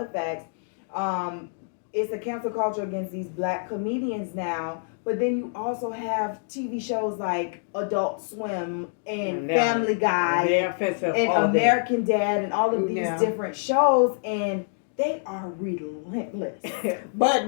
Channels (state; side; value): silent; right; digital silence